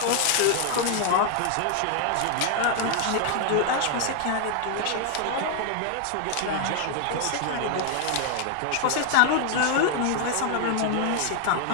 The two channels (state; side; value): different; both; correlation 0.00